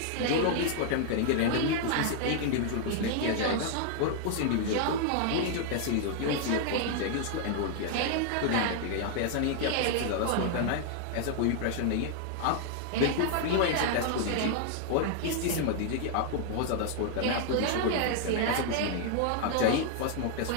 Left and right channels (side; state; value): both; different; correlation 0.00